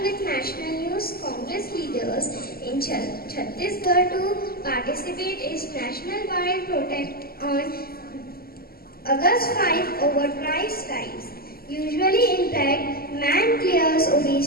with national news, Congress leaders in Chhattisgarh to participate in national wide protest on August 5 over price skies. Usually impact man clears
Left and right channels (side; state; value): right; late; 0.44 ms